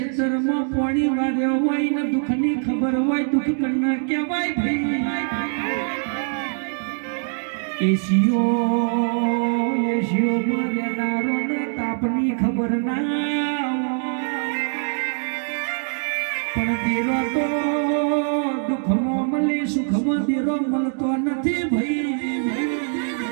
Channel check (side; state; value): left; silent; 63 dB below the other